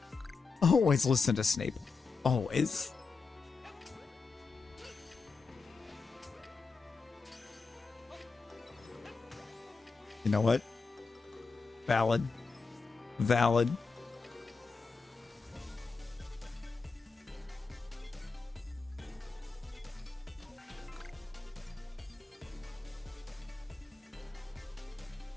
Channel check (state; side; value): quieter; right; 4.5 dB